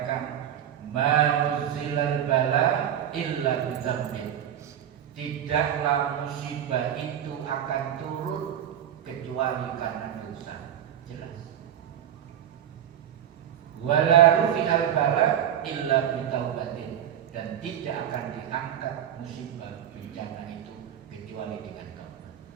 "Manuzilal bala illa bidzambin." Tidaklah musibah itu akan turun kecuali karena dosa. Jelas. Wala rufi'al bala illa bitaubatin, dan tidak akan diangkat musibah bencana itu kecuali dengan taubat.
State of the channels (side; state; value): left; quieter; 10.1 dB